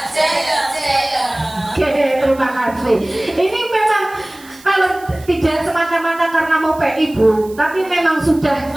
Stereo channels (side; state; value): right; noise; hiss, 23 dB below the sound